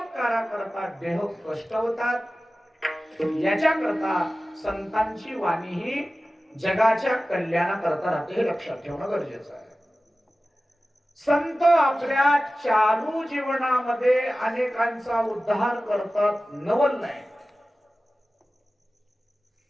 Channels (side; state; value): both; normal; correlation 0.96